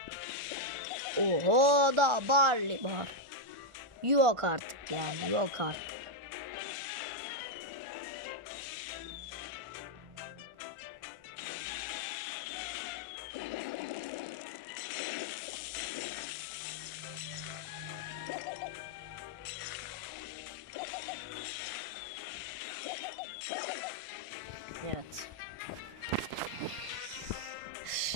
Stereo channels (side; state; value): left; late; 1.4 ms